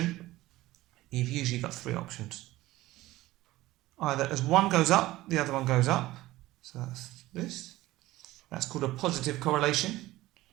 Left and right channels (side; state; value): left; quieter; 17.4 dB